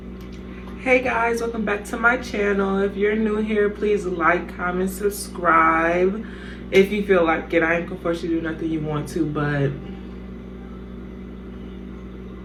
Hey guys, welcome back to my channel. If you're new here, please like, comment, subscribe. If you feel like it, I ain't gonna force you to do nothing you want to, but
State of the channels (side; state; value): both; identical; correlation 1.00